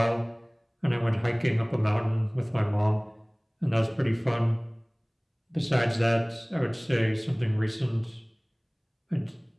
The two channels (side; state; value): both; identical; correlation 1.00